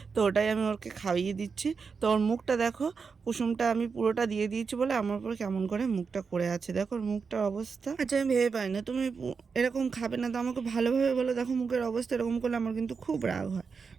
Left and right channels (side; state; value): left; quieter; 5.3 dB